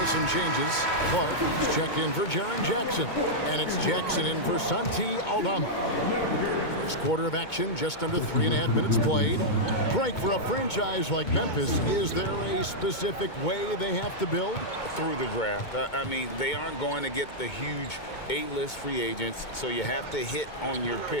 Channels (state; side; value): late; right; 2.2 ms